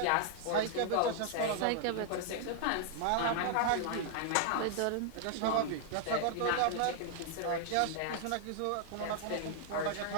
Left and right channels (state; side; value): different; both; correlation 0.00